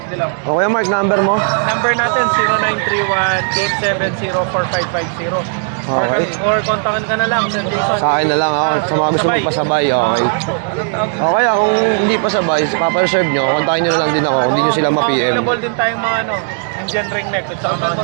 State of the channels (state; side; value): silent; left; digital silence